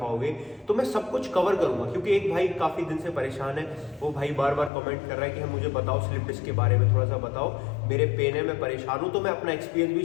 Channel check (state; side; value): drops out; right; at 4.7 s